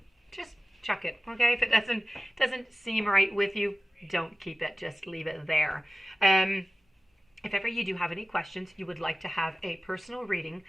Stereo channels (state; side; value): normal; both; correlation 0.95